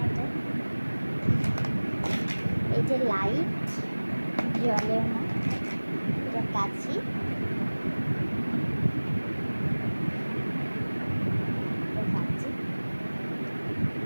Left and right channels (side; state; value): both; inverted; correlation -1.00